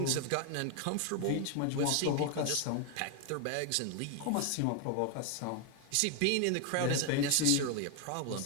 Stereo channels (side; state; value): both; different; correlation 0.01